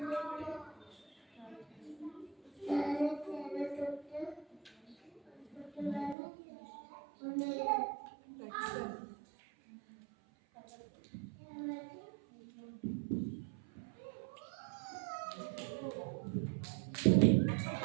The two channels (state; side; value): drops out; left; at 6.2 s